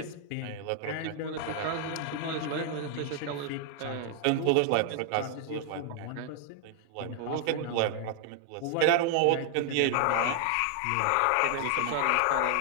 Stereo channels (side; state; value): both; different; correlation 0.00